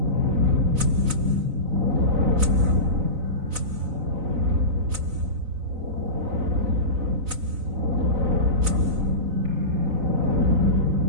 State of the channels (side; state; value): left; late; 4.0 ms